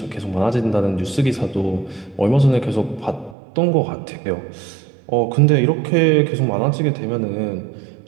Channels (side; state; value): left; drops out; at 3.4 s